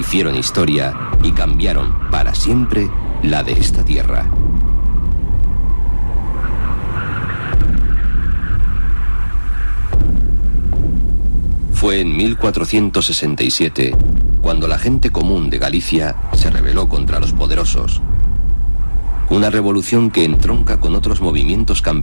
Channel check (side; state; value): both; inverted; correlation -1.00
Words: historia y cambiaron para siempre la de esta tierra. Fue en 1467 cuando la gente común de Galicia se rebeló contra los poderosos. Una revolución que entronca con otros movimientos